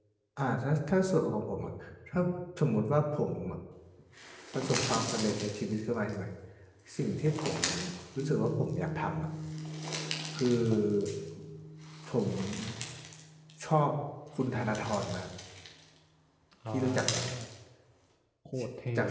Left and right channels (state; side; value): identical; both; correlation 1.00